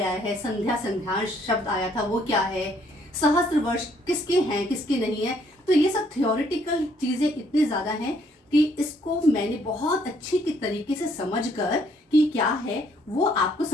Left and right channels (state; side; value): normal; both; correlation 0.66